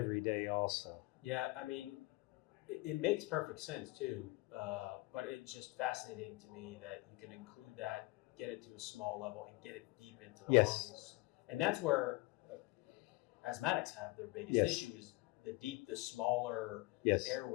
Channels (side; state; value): right; quieter; 22.5 dB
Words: day also. Yeah, I mean, it makes perfect sense too, but it's just fascinating to me that you can include that, get it to a small level, and get it deep into the lungs. And that's where asthmatics have their biggest issue is the smaller